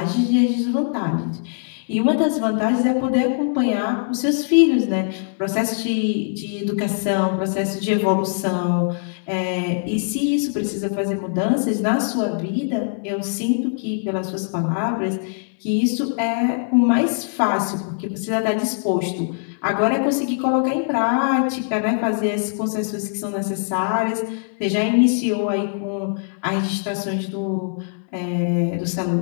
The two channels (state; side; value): silent; right; digital silence